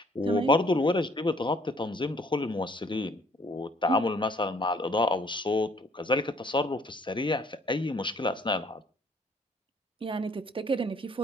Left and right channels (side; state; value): both; normal; correlation 0.61